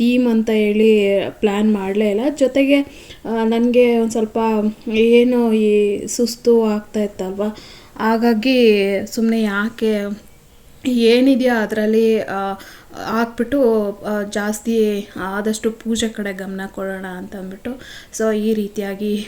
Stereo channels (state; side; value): identical; both; correlation 1.00